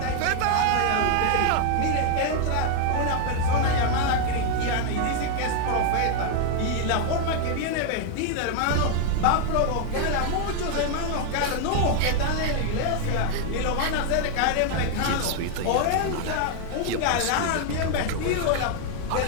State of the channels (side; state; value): both; different; correlation 0.00